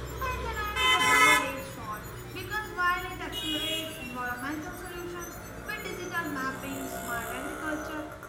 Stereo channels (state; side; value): identical; both; correlation 1.00